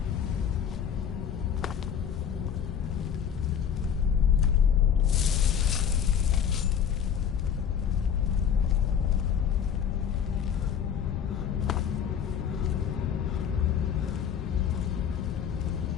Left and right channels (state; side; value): quieter; right; 8.2 dB